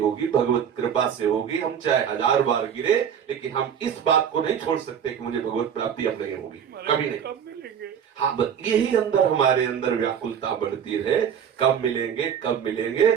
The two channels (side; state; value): left; quieter; 8.2 dB